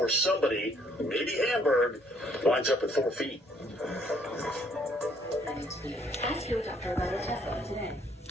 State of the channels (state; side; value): normal; both; correlation 0.65